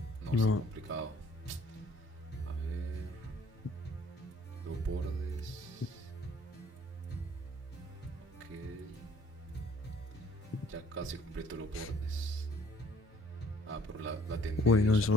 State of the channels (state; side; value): normal; both; correlation 0.59